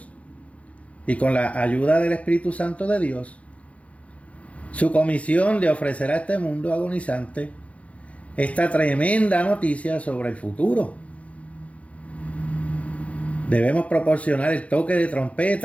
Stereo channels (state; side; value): late; right; 0.065 ms